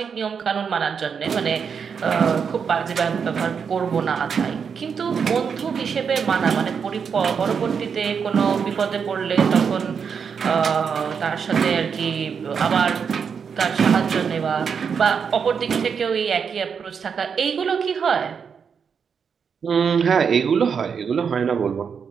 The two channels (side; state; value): left; quieter; 6.5 dB